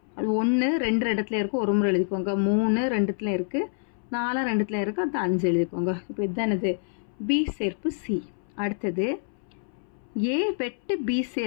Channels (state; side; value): silent; right; 60 dB below the other